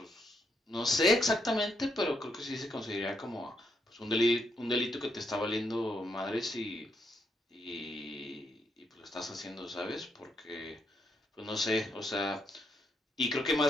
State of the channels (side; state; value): both; normal; correlation 0.78